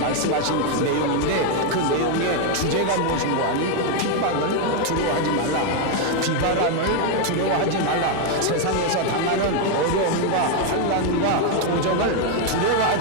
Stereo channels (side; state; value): both; different; correlation 0.01